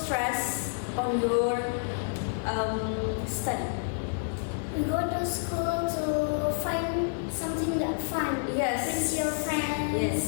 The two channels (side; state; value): right; silent; 58 dB below the other